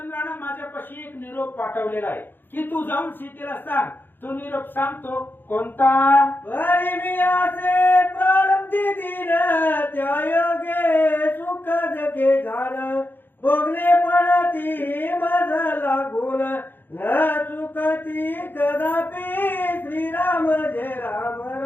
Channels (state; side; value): late; right; 0.096 ms